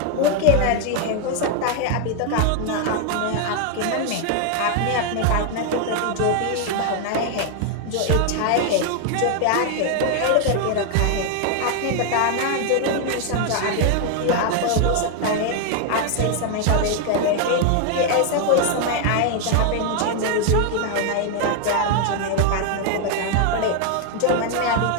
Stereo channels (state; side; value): different; both; correlation 0.00